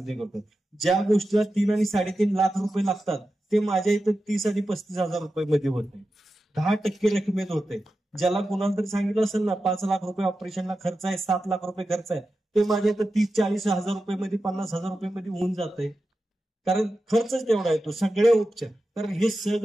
ते करतो. ज्या गोष्टीला 3 आणि 3.5 लाख रुपये लागतात ते माझ्या इथं 30 आणि 35 हजार रुपये मध्ये होते. 10% रकमेत होते. ज्याला कुणाला तरी सांगितलं असेल ना 5 लाख रुपये ऑपरेशनला खर्च आहे, 7 लाख रुपये खर्च आहे, ते माझ्या इथं 30-40 हजार रुपये मध्ये, 50 हजार रुपये मध्ये होऊन जाते. कारण खर्चच तेवढा येतो. सगळे उपचार, कारण हे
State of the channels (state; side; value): normal; both; correlation 0.92